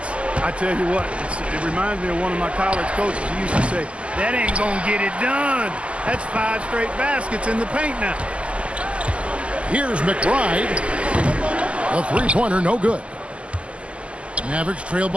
I tell you what, it reminds me of one of my college coaches. He used to say, that ain't gonna get it done. That's 5 straight baskets in the paint now. Here's McBride. A three-pointer, no good. Mavericks trail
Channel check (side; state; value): left; late; 0.057 ms